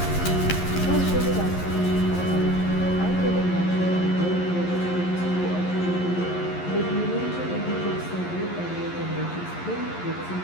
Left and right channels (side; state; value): right; late; 11 ms